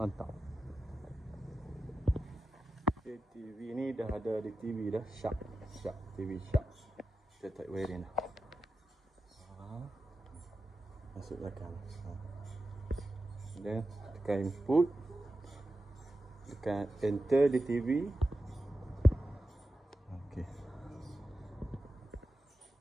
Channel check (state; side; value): normal; both; correlation 0.92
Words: Okay, TV ni dah ada di TV dah. Sharp TV Sharp. Kita tarik wiring dah. Masuk belakang. Dan tekan input, tekan enter di TV. Okey.